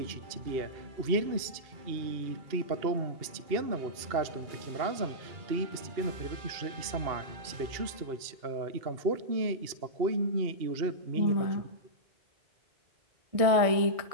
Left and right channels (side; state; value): left; late; 2.7 ms